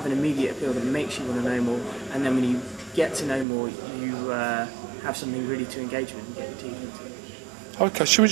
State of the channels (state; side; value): drops out; left; at 3.5 s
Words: an immediate appeal that makes you want to know more, and then when you get to know more, you have something really to engage with and get your teeth into. Okay,